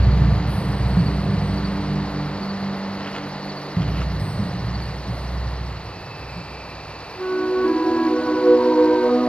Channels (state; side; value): late; right; 0.057 ms